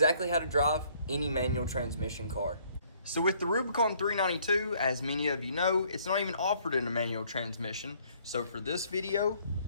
how to drive any manual transmission car. So with the Rubicon 392, as many of you know, it's not even offered in a manual transmission. So for this video,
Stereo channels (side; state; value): both; inverted; correlation -0.62